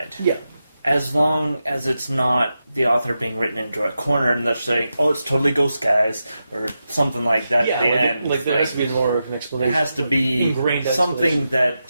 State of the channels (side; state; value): both; inverted; correlation -0.89